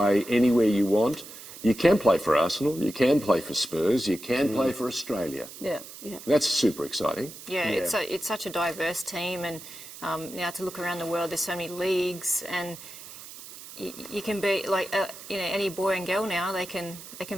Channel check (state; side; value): noise; right; hiss, 15 dB below the sound